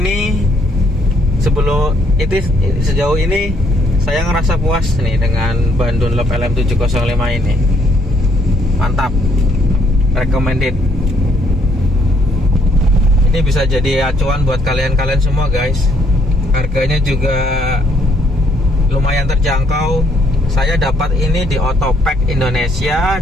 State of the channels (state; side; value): normal; both; correlation 0.69